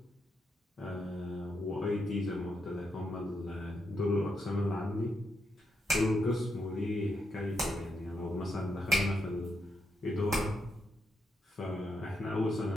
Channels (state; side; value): normal; both; correlation 0.81